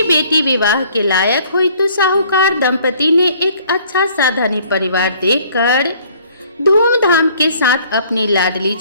बेटी विवाह के लायक हुई तो साहूकार दंपति ने एक अच्छा सा धनी परिवार देखकर धूमधाम के साथ अपनी लाडली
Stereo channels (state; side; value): inverted; both; correlation -0.58